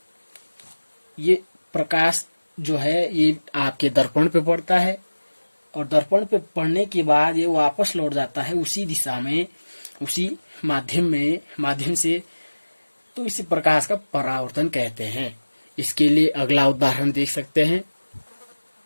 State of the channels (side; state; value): both; inverted; correlation -1.00